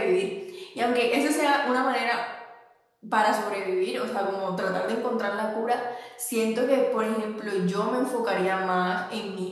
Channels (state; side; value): identical; both; correlation 1.00